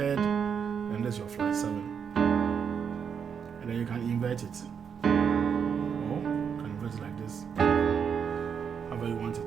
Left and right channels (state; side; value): quieter; left; 7.0 dB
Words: and this is your flat 7, and then you can invert it, or you can invert it like this, however you want